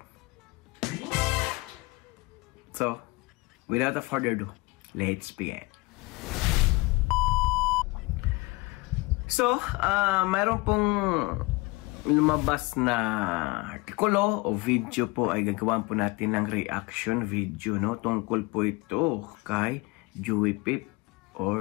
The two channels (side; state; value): right; quieter; 24.1 dB